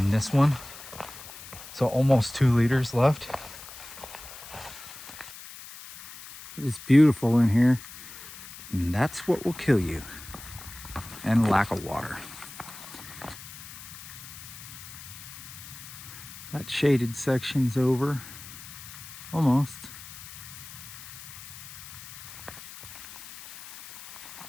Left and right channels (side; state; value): left; noise; hiss, 14 dB below the sound